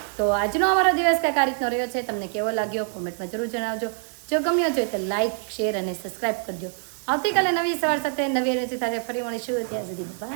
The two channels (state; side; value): silent; left; 62 dB below the other